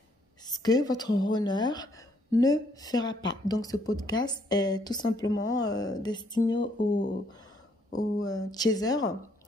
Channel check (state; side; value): normal; both; correlation 0.69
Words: Ce que votre honneur ne fera pas. Donc, ce podcast est tout simplement destiné aux chasers.